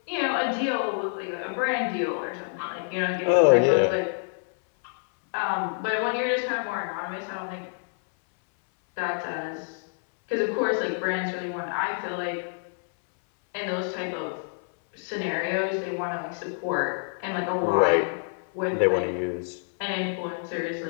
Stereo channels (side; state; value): right; silent; 60 dB below the other